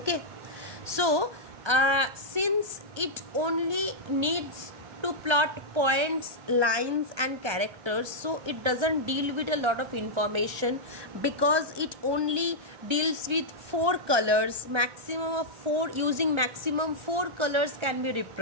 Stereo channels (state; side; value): late; left; 1.3 ms